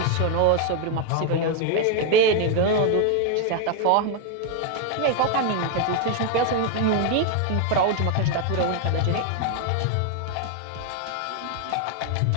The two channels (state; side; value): different; both; correlation 0.01